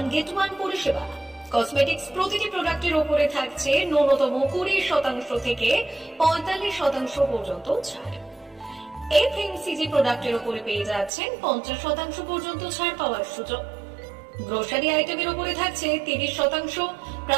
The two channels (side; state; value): left; drops out; at 11.1 s